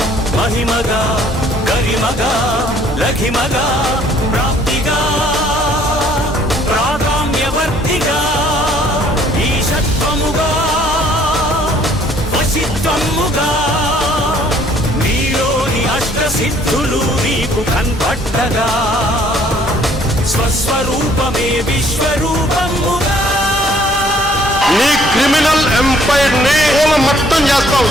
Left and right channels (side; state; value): both; normal; correlation 0.60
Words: మహిమగా గరిమగా లఘిమగా ప్రాప్తిగా ప్రాగామ్యవర్తిగా ఈశత్వముగా వశిత్వముగా నీలోని అష్టసిద్ధులు నీకు కన్పట్టగా స్వస్వరూపమే విశ్వరూపముగా నీ క్రిమినల్ ఎంపైర్ ని మొత్తం చేస్తావు.